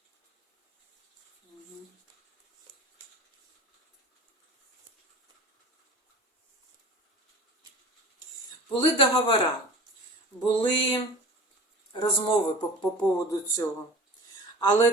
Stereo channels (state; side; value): normal; both; correlation 0.38